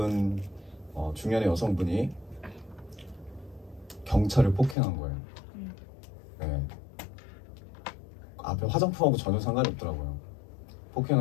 중년의 여성분이 경찰을 폭행한 거예요. 네. 앞에 화장품하고 전혀 상관이 없더라고요.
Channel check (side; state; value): right; drops out; at 4.8 s